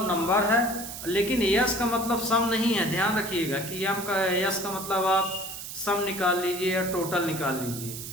नंबर है, लेकिन S का मतलब सम नहीं है। ध्यान रखिएगा कि S का मतलब आप सम निकाल लीजिए या टोटल निकाल लीजिए।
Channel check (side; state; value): right; noise; hiss, 9 dB below the sound